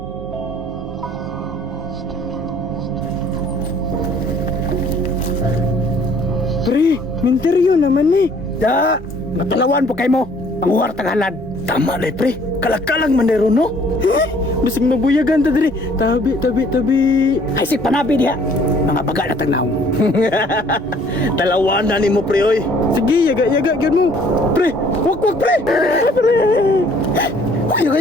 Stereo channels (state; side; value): normal; both; correlation 0.58